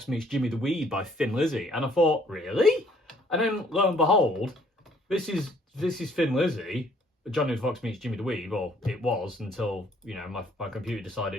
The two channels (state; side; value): normal; both; correlation 0.62